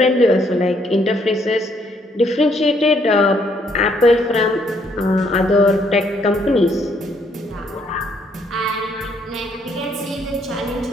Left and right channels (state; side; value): normal; both; correlation 0.69